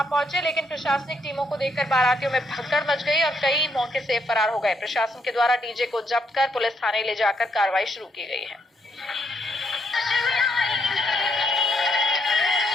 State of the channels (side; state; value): both; normal; correlation 0.74